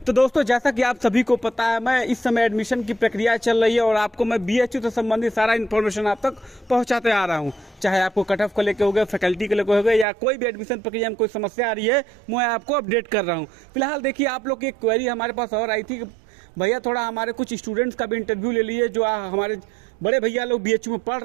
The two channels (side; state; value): left; drops out; at 10.1 s